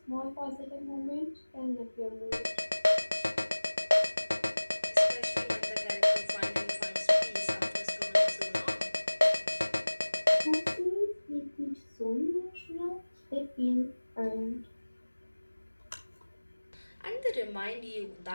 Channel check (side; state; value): both; inverted; correlation -1.00